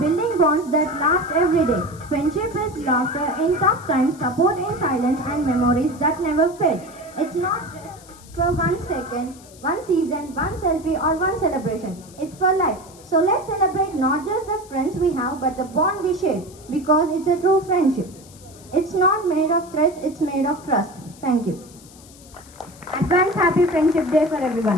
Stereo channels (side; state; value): left; noise; hiss, 23 dB below the sound